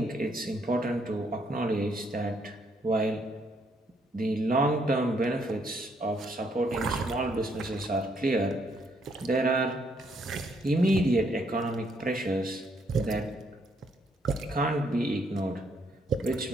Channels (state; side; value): normal; both; correlation 0.71